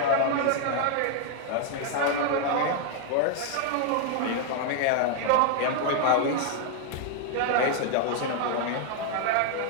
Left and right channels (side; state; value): both; different; correlation 0.00